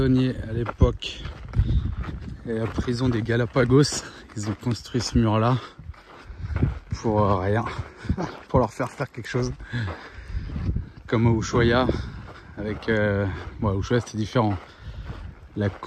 à l'époque. Et la prison des Galapagos, ils ont construit ce mur là pour rien, pour leur faire quelque chose. Comme à Ushuaia, avec bon, à Ushuaia c'était différent. La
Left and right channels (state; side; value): identical; both; correlation 1.00